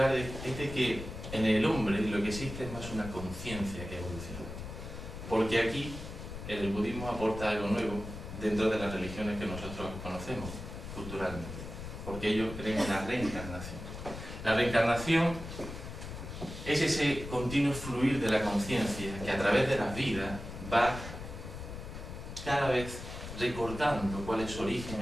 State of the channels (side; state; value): left; noise; rumble, 9 dB below the sound